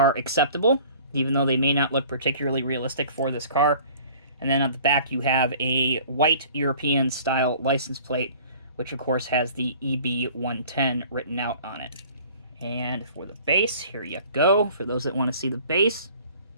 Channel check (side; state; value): both; inverted; correlation -0.49